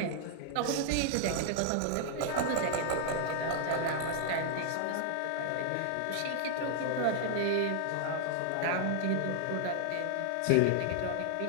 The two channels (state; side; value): different; both; correlation 0.00